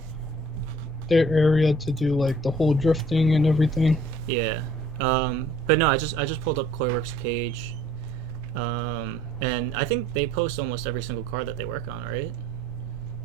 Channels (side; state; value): both; normal; correlation 0.56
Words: their area to do like the whole drifting and everything. Yeah. But no, I just pulled up Coreworks page. And I think they post almost every single car that they work on, right?